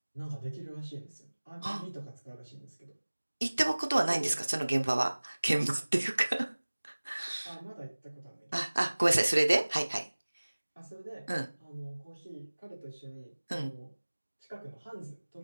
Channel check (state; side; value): inverted; both; correlation -1.00